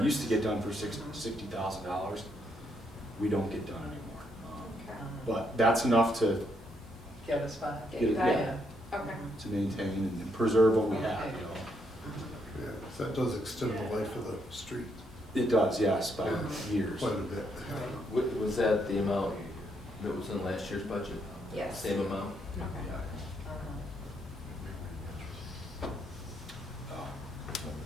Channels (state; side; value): normal; both; correlation 0.75